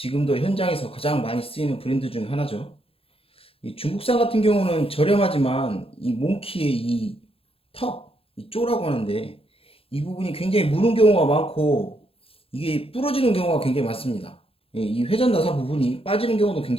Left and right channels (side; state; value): right; late; 0.27 ms